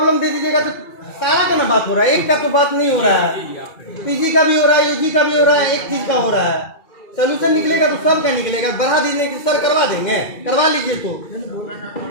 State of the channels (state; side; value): late; right; 2.3 ms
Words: दे दीजिएगा तो सारा का ना बात हो रहा है, एक का तो बात नहीं हो रहा है। पीजी का भी हो रहा है, यूजी का भी हो रहा है, एक चीज का हो रहा है। सोल्यूशन निकलेगा तो सब का निकलेगा। बढ़ा दीजिए कि सर करवा देंगे, करवा लीजिए। तो